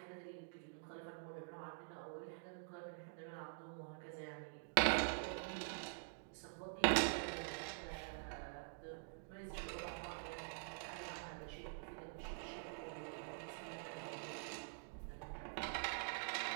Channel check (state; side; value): silent; left; digital silence